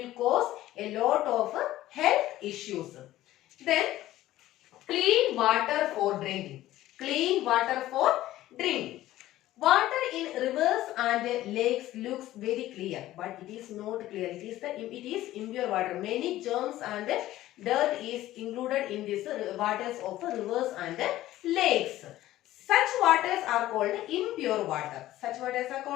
cause a lot of health issues. Then clean water for drinking. Clean water for drinking. Water in rivers and lakes looks very clear, but it is not clear. It is impure water. Many germs and dirt is included in this waters of rivers and lakes. Such waters are called impure water. Such waters are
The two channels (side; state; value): right; quieter; 15.0 dB